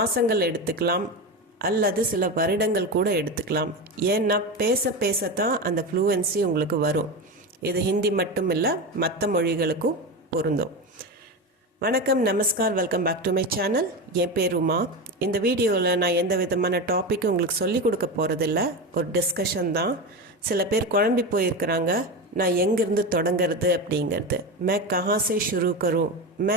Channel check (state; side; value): normal; both; correlation 0.20